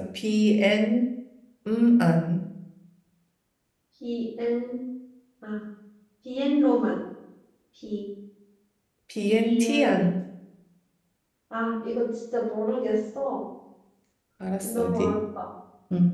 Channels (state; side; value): identical; both; correlation 1.00